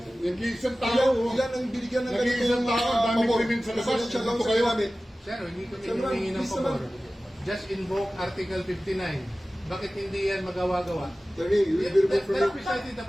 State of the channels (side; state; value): both; normal; correlation 0.96